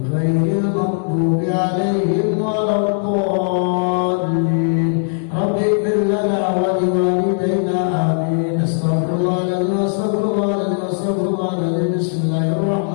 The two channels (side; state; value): right; silent; digital silence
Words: غير المغضوب عليهم ولا الضالين رب اغفر لنا ولوالدينا آمين استغفر الله العظيم استغفر الله العظيم بسم الله